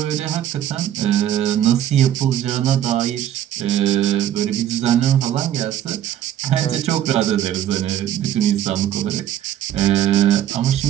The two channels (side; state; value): left; quieter; 11.4 dB